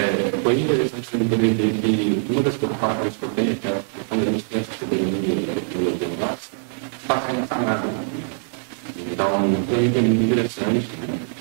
foi interessante também poder ver que uma das preocupações que eu tenho, que é quando a gente tem essa soberania de tecnologia no nosso, está sendo sanada. Então, foi muito interessante.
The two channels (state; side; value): silent; left; digital silence